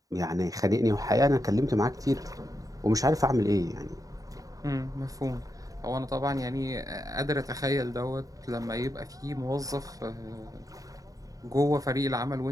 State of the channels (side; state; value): left; late; 0.17 ms